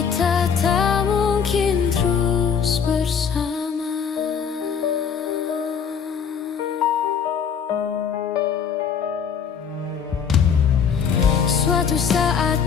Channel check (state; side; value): quieter; right; 6.9 dB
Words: tak mungkin terus bersama. Suatu saat